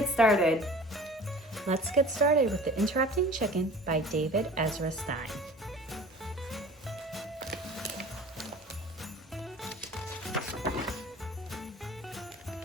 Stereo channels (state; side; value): normal; both; correlation 0.43